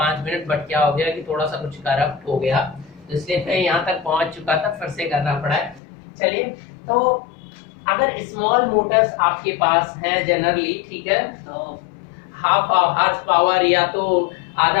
मिनट, बट क्या हो गया कि थोड़ा सा कुछ करप्ट हो गया, तो इसलिए मैं यहाँ तक पहुंच चुका था, फिर से करना पड़ा है। चलिए, तो अगर स्मॉल मोटर्स आपके पास है जनरली, ठीक है, तो हाफ हार्स पावर या तो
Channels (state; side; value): drops out; right; at 5.8 s